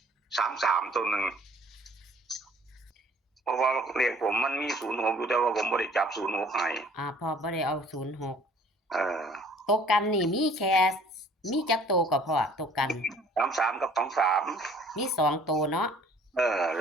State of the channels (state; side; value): normal; both; correlation 0.54